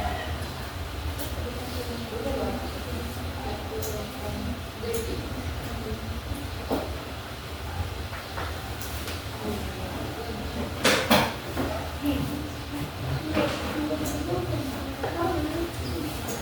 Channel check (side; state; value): both; identical; correlation 1.00